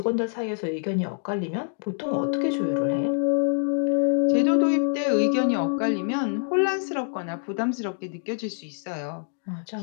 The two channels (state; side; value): silent; right; digital silence